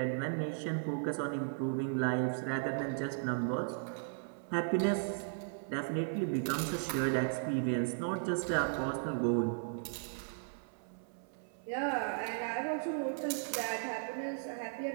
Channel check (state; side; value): silent; left; 54 dB below the other